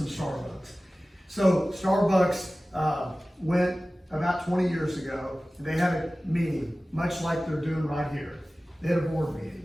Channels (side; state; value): both; normal; correlation 0.97